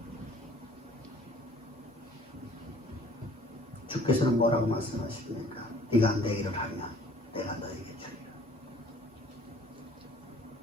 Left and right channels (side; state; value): both; normal; correlation 0.54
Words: 주께서는 뭐라고 말씀하십니까? 네가 내 일을 하면 내가 너에게 주리라.